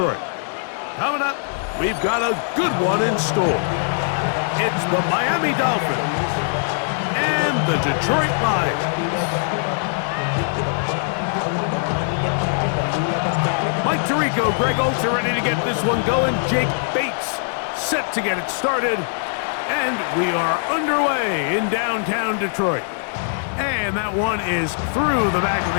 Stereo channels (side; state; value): right; silent; digital silence